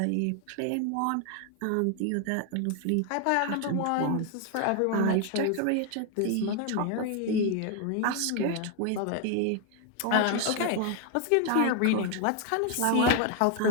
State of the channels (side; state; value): both; different; correlation 0.01